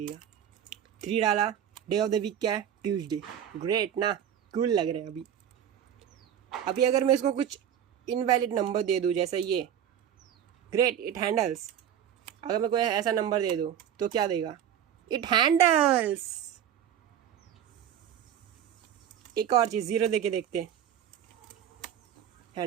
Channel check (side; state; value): left; quieter; 9.7 dB